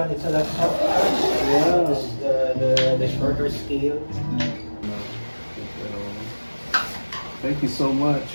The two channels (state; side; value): inverted; both; correlation -1.00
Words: it's a lot softer. Yeah. This is the shorter scale. Thank you so much